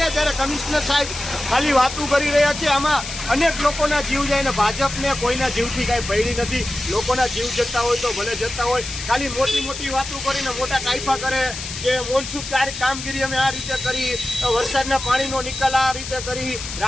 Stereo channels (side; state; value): left; noise; hiss, 8 dB below the sound